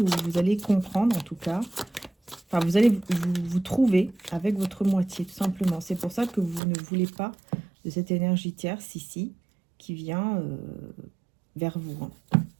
ou vous allez comprendre en tout cas. Enfin, vous allez vous trouver avec votre moitié, tout simplement. C'est pour ça que vous ne voulez pas de cette énergie tierce ici, qui vient vers vous.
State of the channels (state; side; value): drops out; left; at 6.6 s